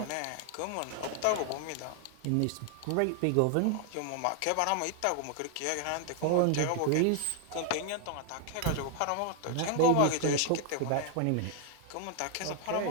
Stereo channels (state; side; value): different; both; correlation 0.00